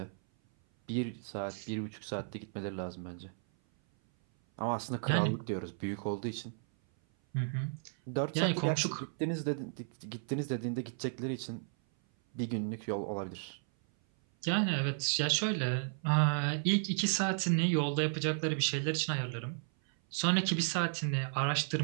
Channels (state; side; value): silent; left; 55 dB below the other